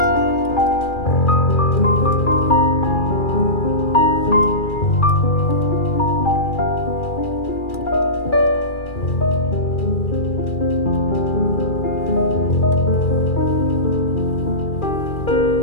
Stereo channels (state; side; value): late; right; 2.4 ms